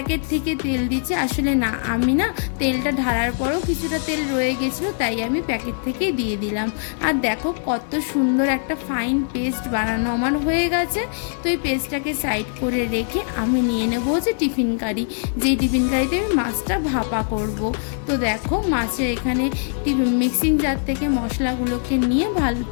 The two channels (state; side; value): silent; right; 64 dB below the other